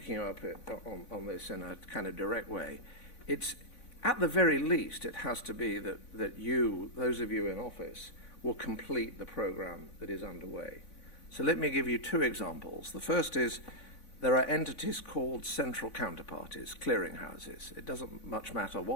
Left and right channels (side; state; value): right; late; 3.5 ms